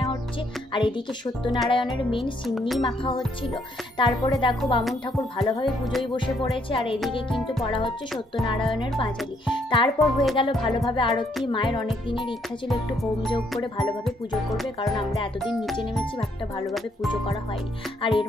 হচ্ছে। আর এদিকে সত্যনারায়ণের মেন সিন্নি মাখা হচ্ছিল। তারপরে দেখো বামুন ঠাকুর ভালোভাবে পুজোয় বসে পড়েছে, আর এদিকে কিন্তু পড়া হচ্ছে সত্যনারায়ণের পাঁচালি। তারপর হয়ে গেল ভালোভাবে আরতি। মায়ের অনেক দিনের ইচ্ছা ছিল একটু হোম যোগ করে ভালোভাবে পুজো করবে, কারণ আমরা এতদিন নিচে নেমেছি, একটা ভালোভাবে পুজো করা হয়নি। আর এর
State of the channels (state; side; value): normal; both; correlation 0.71